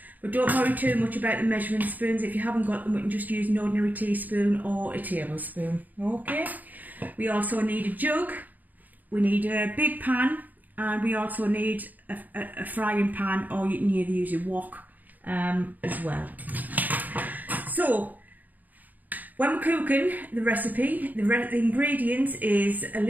But don't worry too much about the measuring spoons. If you haven't got them, we can just use an ordinary teaspoon or a tablespoon. Okay. We also need a jug. We need a big pan, and we also need a frying pan, or you can either use a wok as well. So when we're cooking the recipe, the ingredients is a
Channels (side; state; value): left; late; 0.083 ms